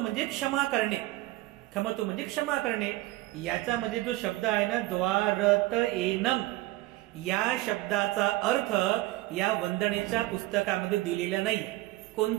क्षमा करणे, खमतु म्हणजे क्षमा करणे. याचा म्हणजे जो शब्द आहे ना द्वारत येनं, या शब्दाचा अर्थ या वंदनेच्या पुस्तकामध्ये दिलेला नाही,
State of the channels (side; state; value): left; quieter; 18.3 dB